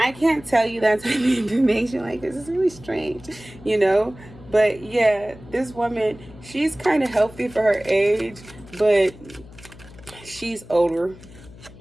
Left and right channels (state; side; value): noise; left; hum, 20 dB below the sound